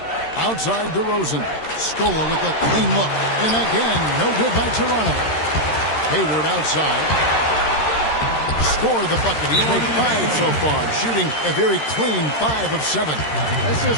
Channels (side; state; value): right; late; 13 ms